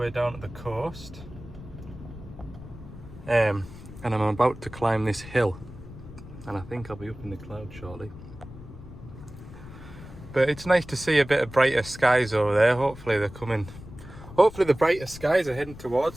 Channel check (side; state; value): left; noise; rumble, 15 dB below the sound